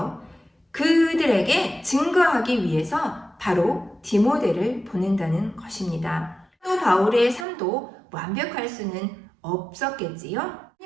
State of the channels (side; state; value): left; drops out; at 7.5 s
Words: 그들에게 증거하기 위해서 바로 디모데를 보낸다는 것입니다. 사도 바울의 삶도 완벽할 수는 없었겠지요.